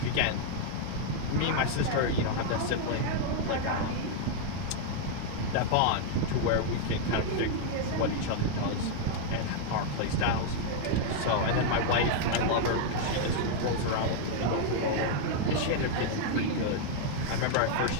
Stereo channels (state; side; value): different; both; correlation 0.00